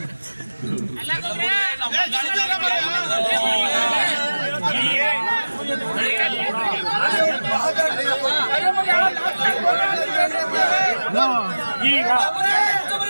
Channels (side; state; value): both; inverted; correlation -1.00